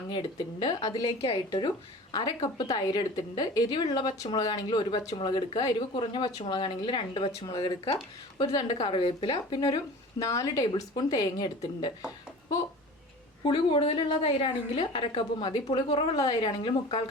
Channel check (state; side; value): normal; both; correlation 0.39